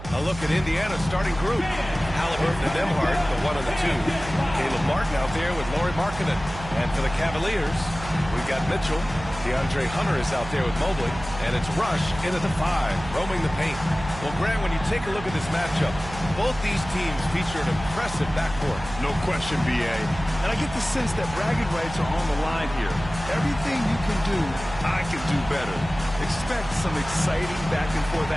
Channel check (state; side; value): noise; right; hum, 12 dB below the sound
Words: A look at Indiana's starting group. Halliburton and Nembhard, the 1 and the 2. Caleb Martin out there with Lauri Markkanen. And for the Cavaliers, we've got Mitchell. DeAndre Hunter is out there with Mobley. And it's Rush in at the 5, roaming the paint. Well, Grant, when you take a look at this matchup, both these teams feature an impressive backcourt. No question, B.A. And I get the sense that bragging rights are on the line here. Everything you can do, I can do better. Expect some exciting back-and-forth